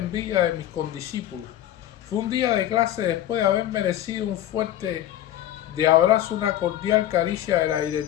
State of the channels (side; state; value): right; quieter; 12.5 dB